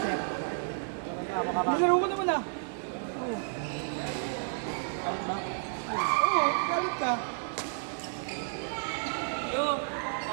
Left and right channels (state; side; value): silent; left; digital silence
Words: Nilaro ko naman ah. Oo. Galit ba? Oo, galit ka.